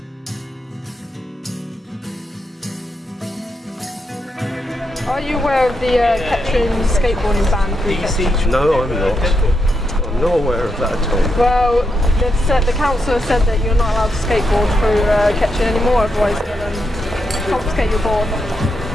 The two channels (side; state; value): both; normal; correlation 0.83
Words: Are you aware of the Kettering skateboarding ban through Kettering? No, I'm not. I'm not aware of that at all. Well, the council has said that you're not allowed to skateboard through Kettering anymore, otherwise they'll confiscate your board.